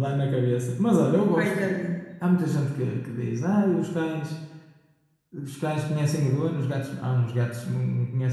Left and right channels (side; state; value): both; identical; correlation 1.00